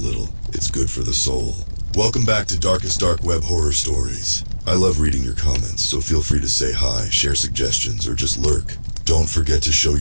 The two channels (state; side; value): inverted; both; correlation -1.00